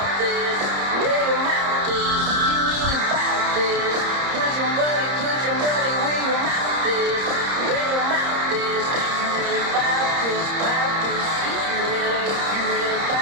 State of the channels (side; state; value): left; late; 30 ms